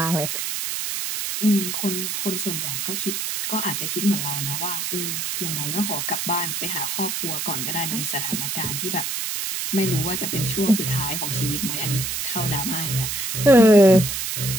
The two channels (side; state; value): right; noise; hiss, 2 dB below the sound